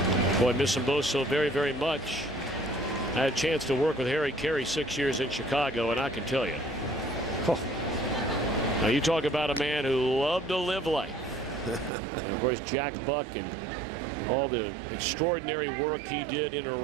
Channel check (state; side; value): drops out; left; at 11.9 s